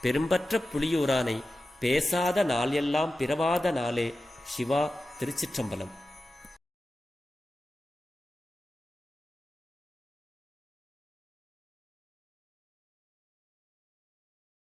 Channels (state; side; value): normal; both; correlation 0.93